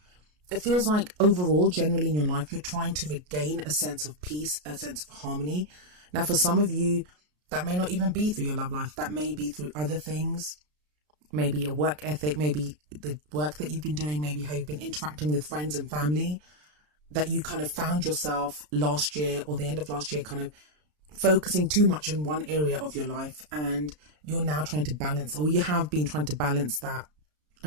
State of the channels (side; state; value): left; late; 33 ms